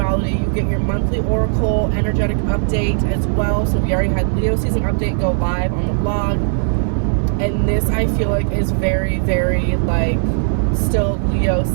You get your monthly oracle energetic update as well. So we already had Leo season update go live on the blog. And this, I feel like, is very, very, like, still Leo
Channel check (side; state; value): left; silent; 61 dB below the other